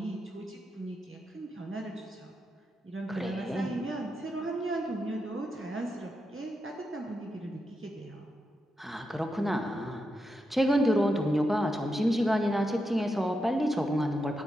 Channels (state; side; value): normal; both; correlation 0.86